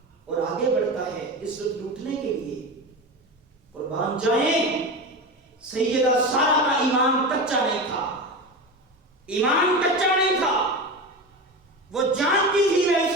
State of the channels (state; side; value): normal; both; correlation 0.24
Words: اور آگے بڑھتا ہے عزت لوٹنے کے لیے۔ قربان جائیں، سیدہ سارہ کا ایمان کچا نہیں تھا، ایمان کچا نہیں تھا۔ وہ جانتی تھی میں اس